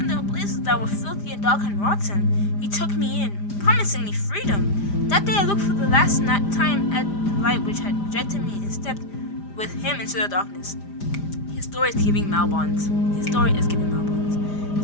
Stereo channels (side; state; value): right; late; 5.0 ms